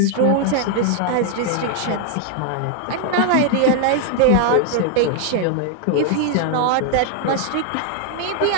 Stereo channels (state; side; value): different; both; correlation 0.00